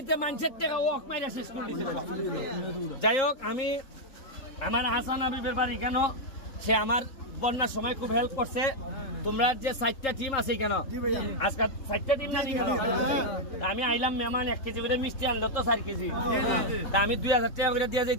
মানুষের টেকা ওক মাইরা শেষ করে দিছে। যাই হোক, আমি আমার হাসান হাবিবের বাড়ি কেন, সে আমার বন্যার সময় খুব হেল্প করছে। তোমরা যে 4টা টিম আছে কেন, আজকে 4টা টিম জানি কেন, আমি আইলাম মেহমান 1 কেজি করে মিষ্টি আনলো তো 4 কেজি, তা আমি 2000 টাকা করে দিয়ে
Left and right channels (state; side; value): late; right; 3.8 ms